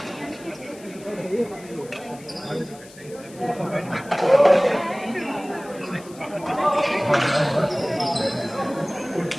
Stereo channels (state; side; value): noise; left; hiss, 21 dB below the sound